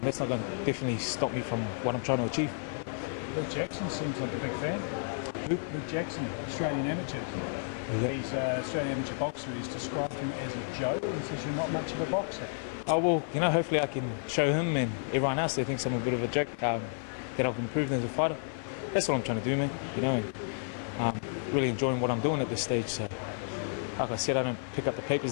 that's not going to definitely stop me from what I'm trying to achieve. Luke Jackson seems like a big fan. Luke Jackson, Australian amateur. Yeah. He's an Australian amateur boxer. He's described him as a joke, and says you're not much of a boxer. Oh well, hopefully I can show him and everyone else that thinks I'm a bit of a joke that I've improved as a fighter. That's what I'm trying to do, man. And really enjoying what I'm doing at this stage. So, like I said, I don't pick up the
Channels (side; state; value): right; silent; 57 dB below the other